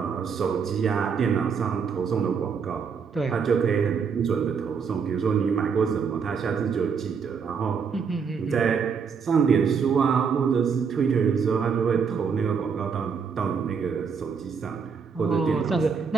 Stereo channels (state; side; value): quieter; left; 6.1 dB